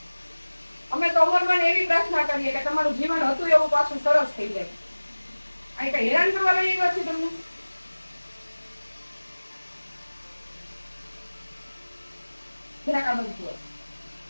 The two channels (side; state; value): both; inverted; correlation -1.00